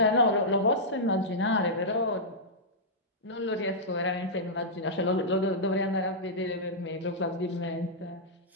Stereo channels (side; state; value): both; normal; correlation -0.11